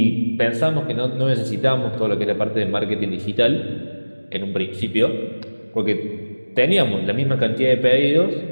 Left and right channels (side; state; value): both; inverted; correlation -1.00